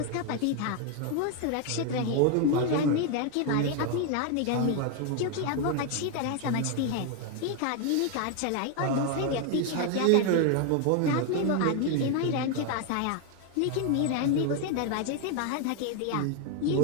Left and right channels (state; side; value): different; both; correlation 0.01